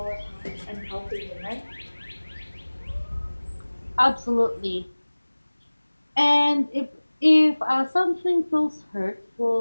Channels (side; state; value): both; inverted; correlation -1.00